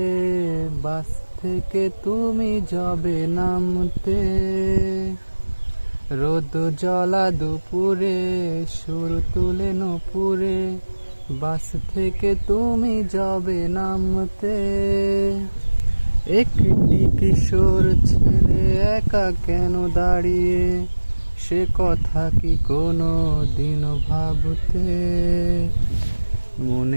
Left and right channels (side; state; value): both; inverted; correlation -1.00